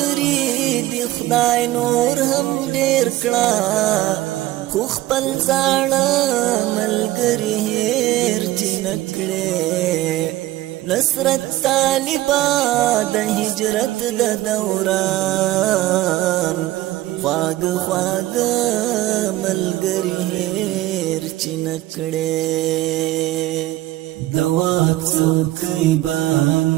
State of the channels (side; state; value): left; quieter; 16.4 dB